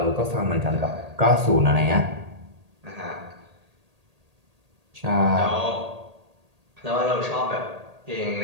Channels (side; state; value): left; late; 1.8 ms